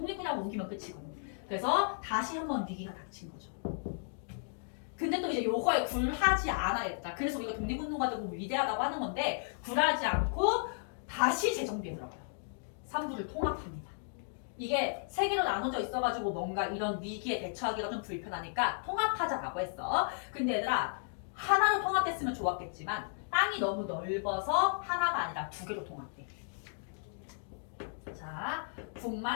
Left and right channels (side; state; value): right; silent; digital silence